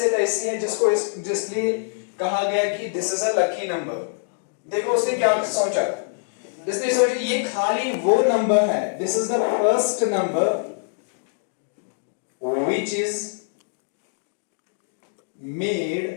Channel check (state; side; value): silent; right; digital silence